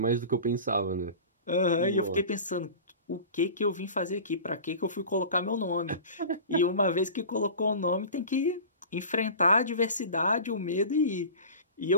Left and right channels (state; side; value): inverted; both; correlation -0.37